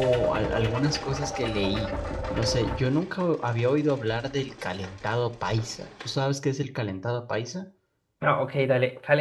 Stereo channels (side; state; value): both; identical; correlation 1.00